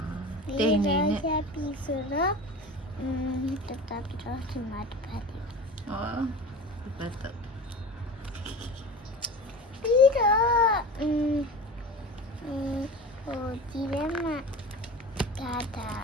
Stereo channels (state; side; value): normal; both; correlation 0.33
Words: ဒီ 对 တော့ 呢。 ရပြီဆိုတော့တတပြီးတော့ဒီမှာတစ်ဖက်ဒီ 哦，不得。 ပြီးတော့ဟိုဒီထဲမှာဒါဟ